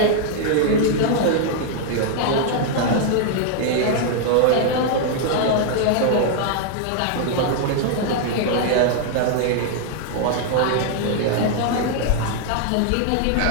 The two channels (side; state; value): both; different; correlation 0.00